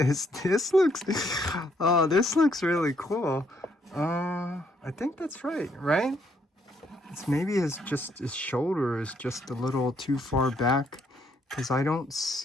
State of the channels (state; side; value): normal; both; correlation 0.71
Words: this looks, oh, this looks really cool. I think that's right? It's maybe his shoulder is just a little too far back, because I don't